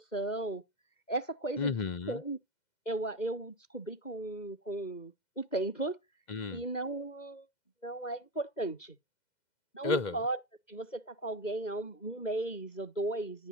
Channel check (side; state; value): right; late; 2.0 ms